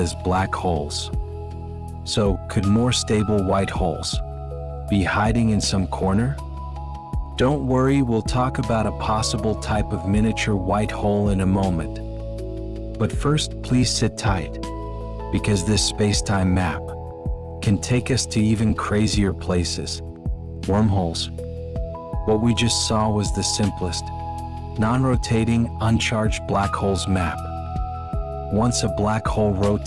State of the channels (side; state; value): both; identical; correlation 1.00